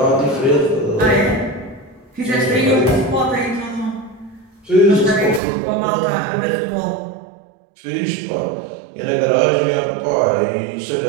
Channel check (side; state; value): left; drops out; at 5.4 s